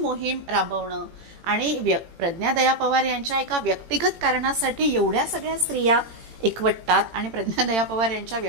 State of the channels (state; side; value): late; left; 18 ms